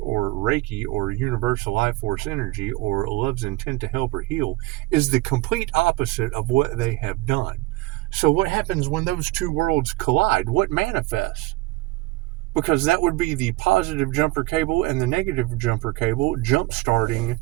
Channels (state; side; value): quieter; left; 20.0 dB